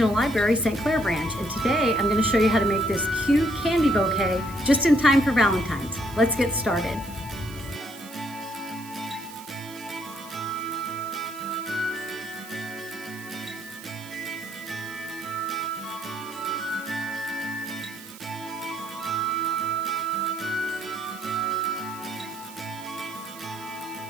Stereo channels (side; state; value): right; noise; hiss, 17 dB below the sound